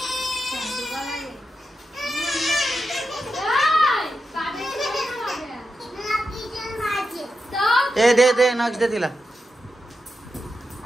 ए दे दे नक्ष दे तिला.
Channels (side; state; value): both; normal; correlation 0.88